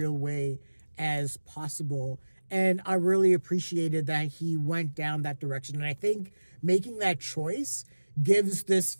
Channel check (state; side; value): inverted; both; correlation -1.00